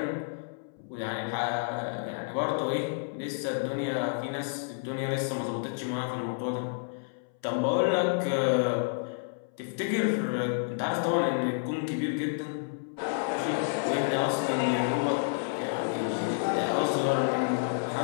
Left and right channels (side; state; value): right; silent; 58 dB below the other